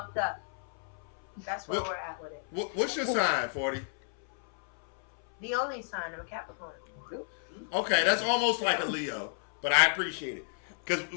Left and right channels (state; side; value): silent; right; 57 dB below the other